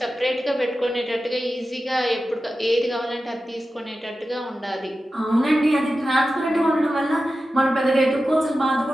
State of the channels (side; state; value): both; normal; correlation 0.93